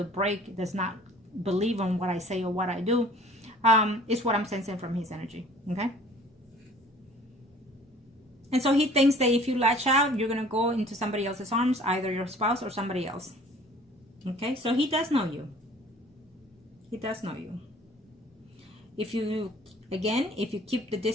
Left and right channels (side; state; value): both; normal; correlation 0.50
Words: break, does not believe on what I say or what I do? Is what I'm sensing from his energy. Okay? And so he thinks that if you latch out, you're going to go into somebody else's arms, either your spouse or somebody else. Okay? So he does know you. He does know you. If you keep the